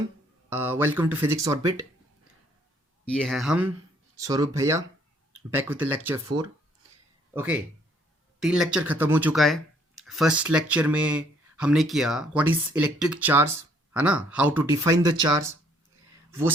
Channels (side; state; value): both; normal; correlation 0.64